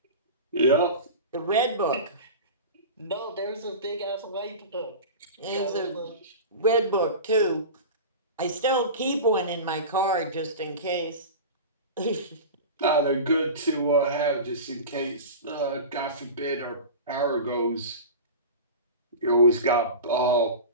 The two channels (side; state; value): both; inverted; correlation -0.31